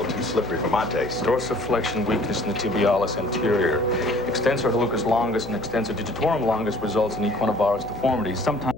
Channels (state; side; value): noise; left; hum, 14 dB below the sound